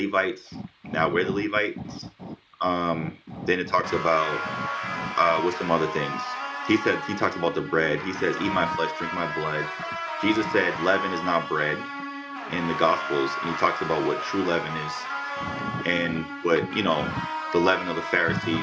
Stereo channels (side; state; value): both; identical; correlation 1.00